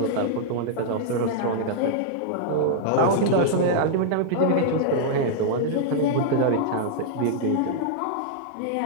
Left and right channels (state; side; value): different; both; correlation -0.02